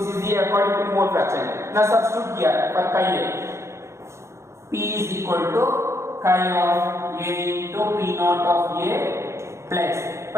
is the according to mole fraction. Now substitute here for chi A. P is equal to chi of A into P naught of A plus,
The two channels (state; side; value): late; left; 0.13 ms